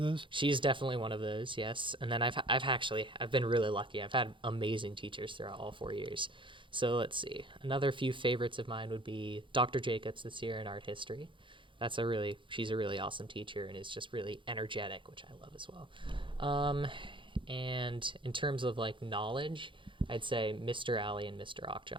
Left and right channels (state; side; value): late; left; 0.24 ms